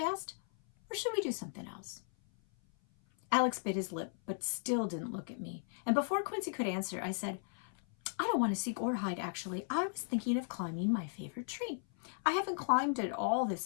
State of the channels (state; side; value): silent; right; 54 dB below the other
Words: Or should we do something else? Alex bit his lip, but still didn't look at me. And before Quincy could answer, I said, I don't want to seek or hide, actually. I was thinking of climbing my favorite tree. I haven't climbed it all this